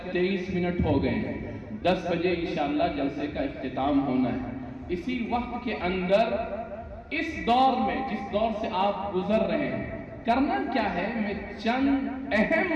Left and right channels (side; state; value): both; identical; correlation 1.00